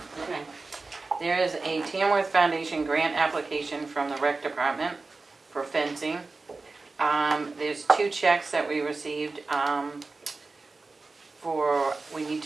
Okay. There is a Tamworth Foundation grant application from the rec department for fencing. There's 2 checks that we received we need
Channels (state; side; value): quieter; left; 3.7 dB